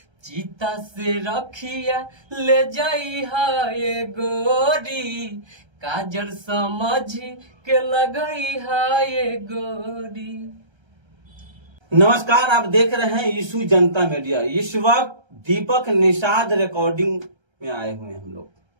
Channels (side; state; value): left; late; 1.3 ms